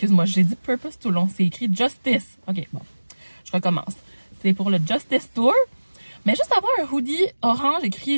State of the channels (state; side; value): inverted; both; correlation -1.00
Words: j'ai dit Purpose tout le long, c'est écrit Justice. Ok, bon, je recommence. C'est pour le Justice Tour. Mais juste avoir un hoodie orange écrit